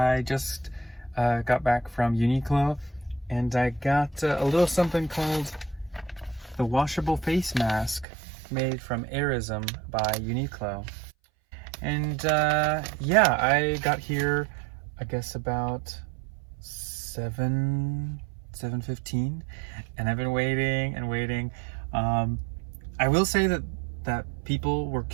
just got back from Uniqlo and I got a little something called the washable face mask made from Airism by Uniqlo. And yeah, I got here I guess about 7:15 and I've been waiting and waiting. I will say that people were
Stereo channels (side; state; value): left; drops out; at 8.1 s